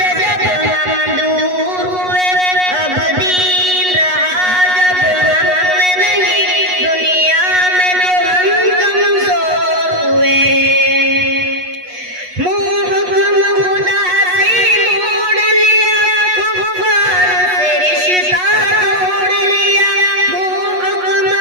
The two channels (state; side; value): late; left; 8.2 ms